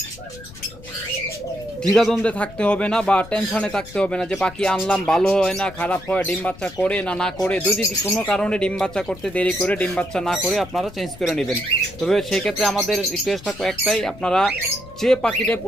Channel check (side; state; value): left; noise; rumble, 18 dB below the sound